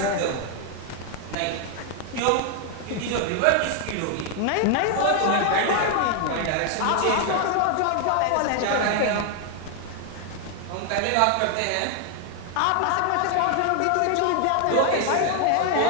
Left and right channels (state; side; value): different; both; correlation 0.00